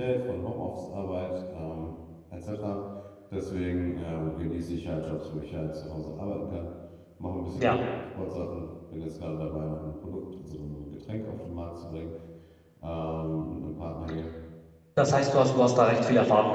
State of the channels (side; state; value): both; identical; correlation 1.00